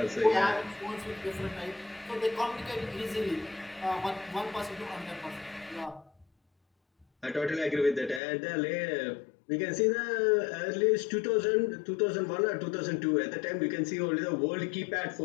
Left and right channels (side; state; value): right; drops out; at 8.2 s